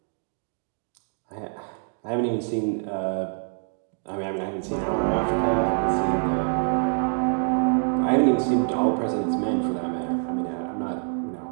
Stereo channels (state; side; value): silent; left; 61 dB below the other